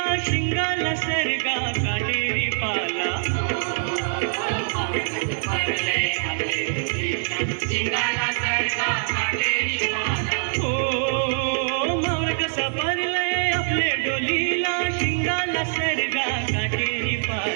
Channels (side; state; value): left; silent; digital silence